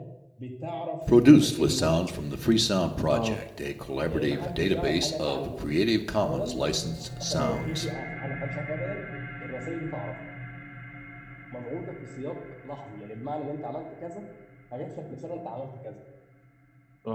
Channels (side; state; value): both; identical; correlation 1.00